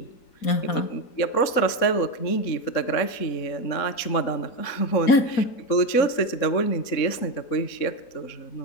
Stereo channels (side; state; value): right; late; 3.7 ms